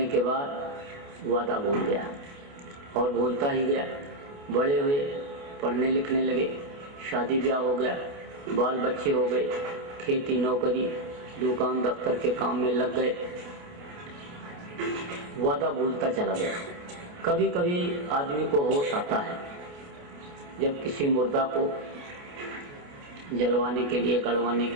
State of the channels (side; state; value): left; late; 28 ms